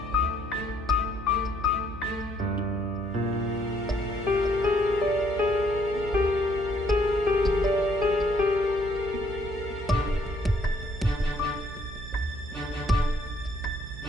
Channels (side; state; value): right; noise; hum, 11 dB below the sound